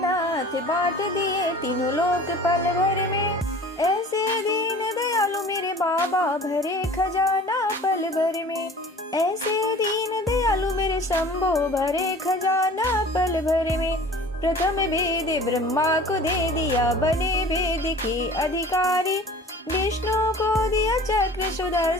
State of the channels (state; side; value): normal; both; correlation 0.44